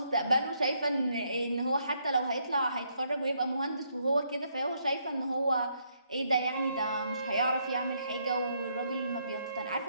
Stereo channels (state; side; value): inverted; both; correlation -0.73